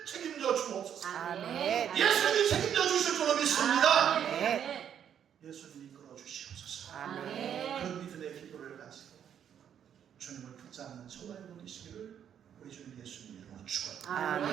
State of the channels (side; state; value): left; quieter; 9.0 dB